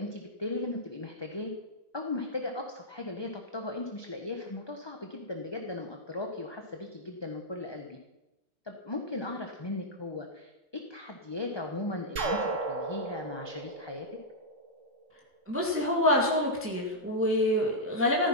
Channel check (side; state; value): both; normal; correlation -0.07